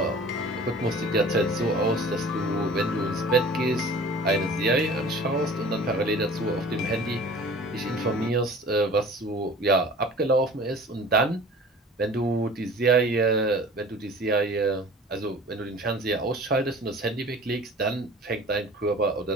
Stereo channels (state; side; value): normal; both; correlation 0.44